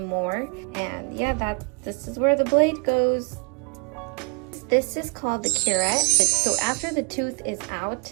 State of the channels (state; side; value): quieter; left; 34.4 dB